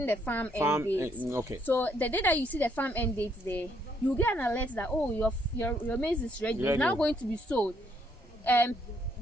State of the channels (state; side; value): normal; both; correlation 0.71